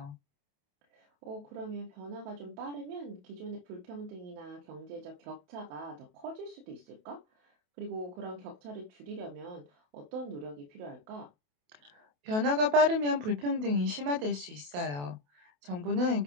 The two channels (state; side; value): late; left; 28 ms